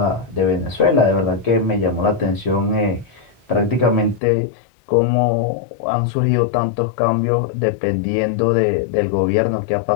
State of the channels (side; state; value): right; drops out; at 4.2 s